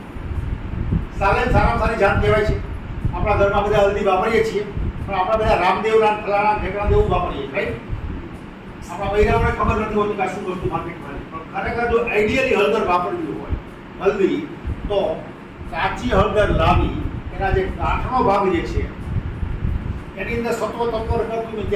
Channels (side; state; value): both; identical; correlation 1.00